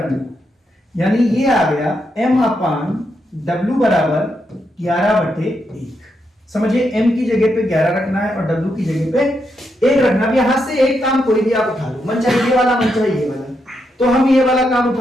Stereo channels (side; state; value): both; normal; correlation 0.82